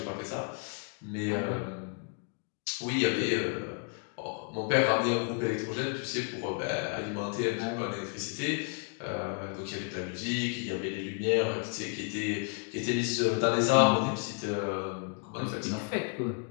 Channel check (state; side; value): quieter; right; 37.3 dB